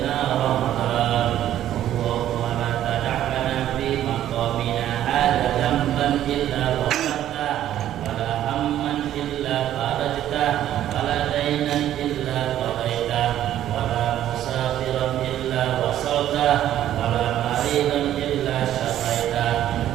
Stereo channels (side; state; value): left; quieter; 12.0 dB